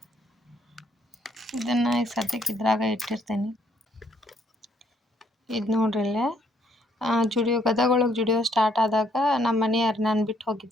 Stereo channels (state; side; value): normal; both; correlation 0.69